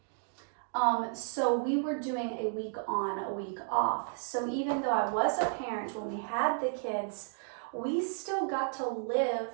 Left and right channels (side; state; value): left; silent; 56 dB below the other